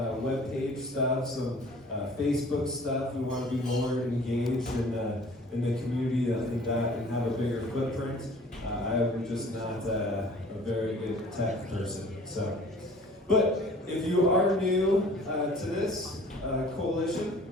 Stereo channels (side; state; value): both; normal; correlation 0.50